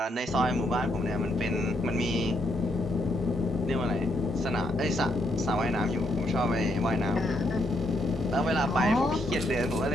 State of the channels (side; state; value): both; normal; correlation 0.76